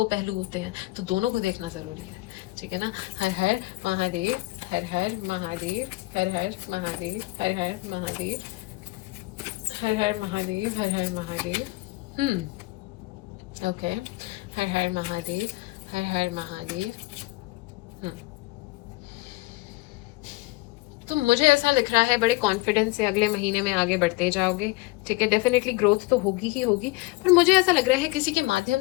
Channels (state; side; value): quieter; right; 21.6 dB